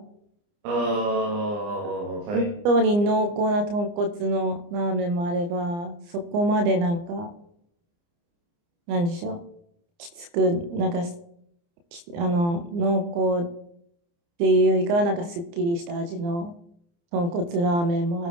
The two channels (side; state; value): left; late; 29 ms